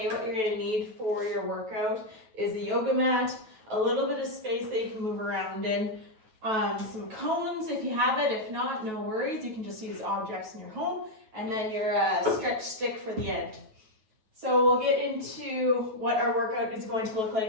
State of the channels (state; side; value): late; left; 9.3 ms